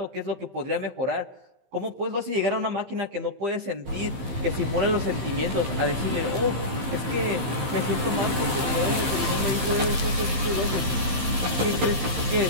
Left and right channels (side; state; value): left; late; 15 ms